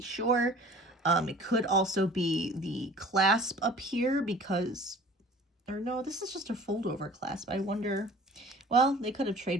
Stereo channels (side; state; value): both; normal; correlation 0.47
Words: It could also be the clasp up here, because, or no, this is just a fold over clasp. I wonder, well, they could have